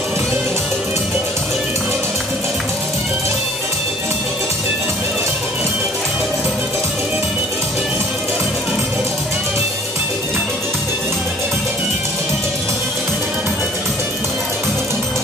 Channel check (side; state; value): both; normal; correlation 0.53